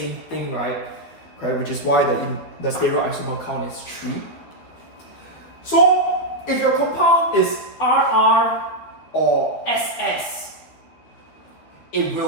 thing, right? Okay, which is why the stereoisomer count is 3. So, if your compound is RR or SS, it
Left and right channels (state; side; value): late; right; 13 ms